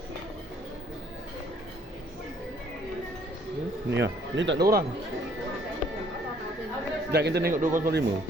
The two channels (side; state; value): both; normal; correlation 0.62